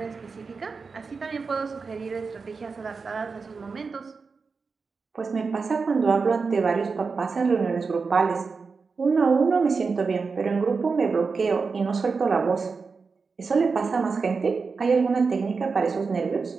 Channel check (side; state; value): left; quieter; 4.8 dB